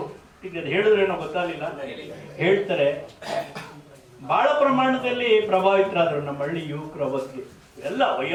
ಈಗ ಹೇಳಿದ್ರೇನೋ ಗೊತ್ತಾಗಲಿಲ್ಲ, ಹೇಳ್ತಾರೆ ಬಹಳ ಪ್ರಮಾಣದಲ್ಲಿ ಪ್ರಭಾವಿತರಾದರು ನಮ್ಮ ಹಳ್ಳಿ ಯುವಕರು. ಅವತ್ತಿಗೆ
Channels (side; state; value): both; identical; correlation 1.00